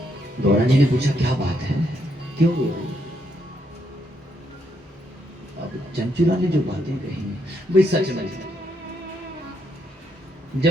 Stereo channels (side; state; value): both; normal; correlation 0.76